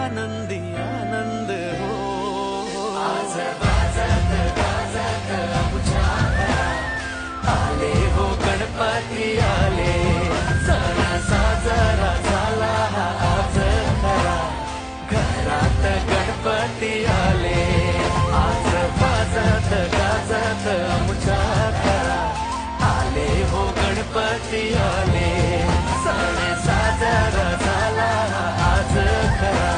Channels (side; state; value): both; identical; correlation 1.00